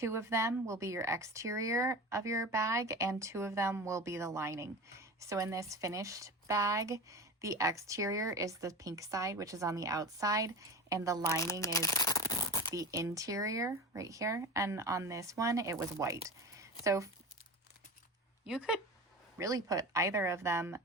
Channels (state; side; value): normal; both; correlation 0.30